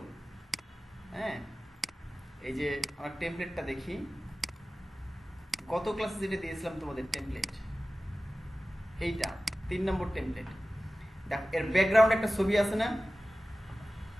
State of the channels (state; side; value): normal; both; correlation 0.96